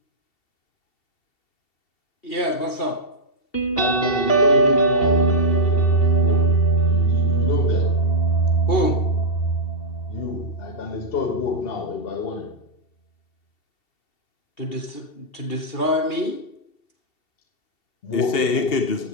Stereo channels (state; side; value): late; right; 2.7 ms